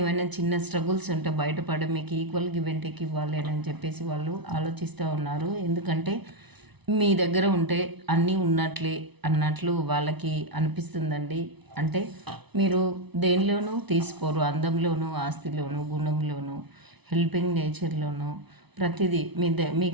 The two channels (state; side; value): late; left; 0.99 ms